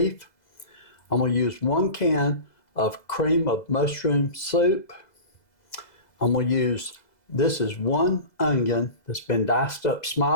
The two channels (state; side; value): late; right; 2.0 ms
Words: I'm going to use 1 can of cream of mushroom soup. I'm going to use, this is 1 onion that's been diced up